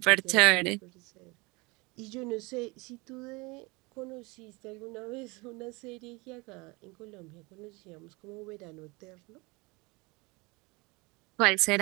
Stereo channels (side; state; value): left; quieter; 25.8 dB